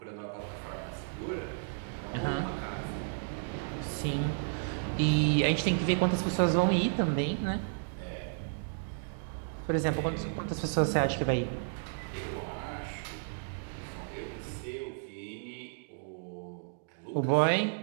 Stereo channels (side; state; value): left; silent; digital silence